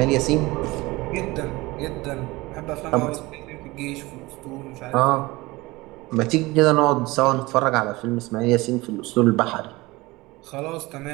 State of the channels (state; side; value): quieter; left; 21.3 dB